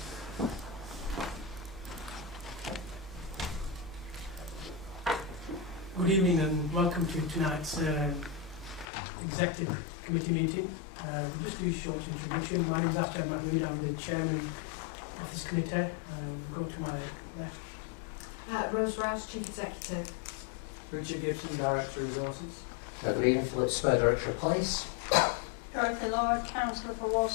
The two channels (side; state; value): right; drops out; at 8.8 s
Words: Good evening and welcome to tonight's Executive Committee meeting. We'll just do a short introduction. My name is Afjan Mahmood, I'm the Chairman of this committee. We'll go to my left. Rose Rouse, Chief Executive. Richard Gibson, Director of Resources. Good evening, Philip Spur, Director of Police. Dorothy Lord, Councillor for